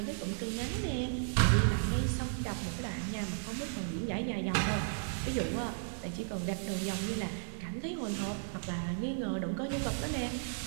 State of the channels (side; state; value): left; silent; digital silence